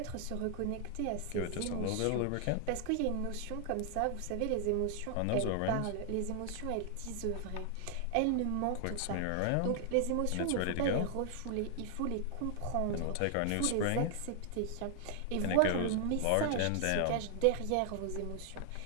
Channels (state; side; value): different; both; correlation 0.00